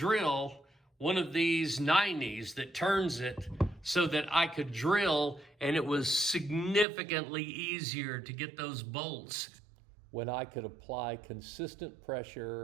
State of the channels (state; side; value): drops out; left; at 6.9 s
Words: one of these 90s that turns it so that I could drill, and it was significantly easier to get those bolts. When I could apply consistent